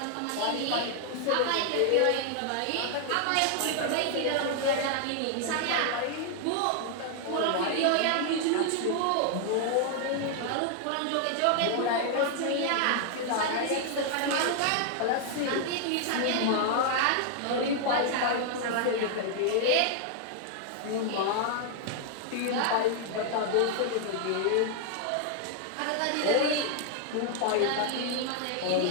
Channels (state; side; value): different; both; correlation 0.00